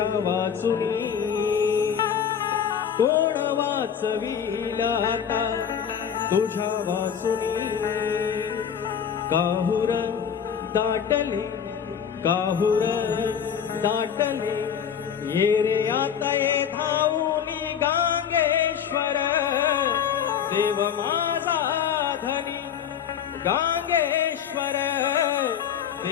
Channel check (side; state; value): right; quieter; 8.1 dB